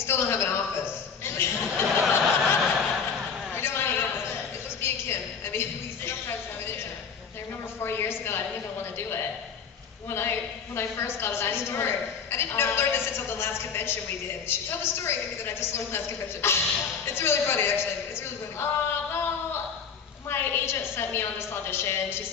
don't have an office. We don't have an office. It must be a Kim. I mean, we sometimes have an intern. I remember 4 years ago, I didn't even want to do it. When I first got it, I didn't I didn't learn this until the last convention we did. She told the story maybe that I just learned last convention. It's really funny, actually. It's really funny. Well, my agent sent me on this audition. She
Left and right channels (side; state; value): right; quieter; 6.4 dB